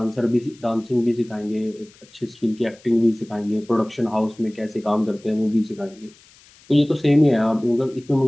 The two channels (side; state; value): left; noise; hiss, 27 dB below the sound